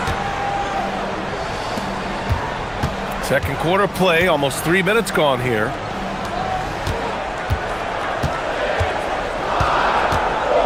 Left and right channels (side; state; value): both; identical; correlation 1.00